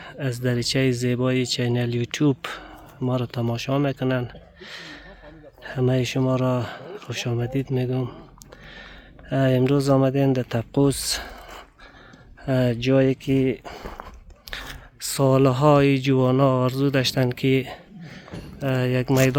از دریچه زیبای چینل یوتیوب ما را تماشا میکنن. همه شما را خوش آمدید میگم. امروز آمدیم در تبقوس، جایی که سالهای جوانا آرزو داشتن که یک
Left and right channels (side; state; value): both; identical; correlation 1.00